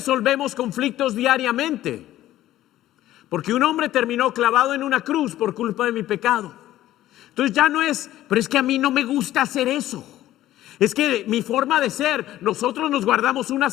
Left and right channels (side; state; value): right; quieter; 14.1 dB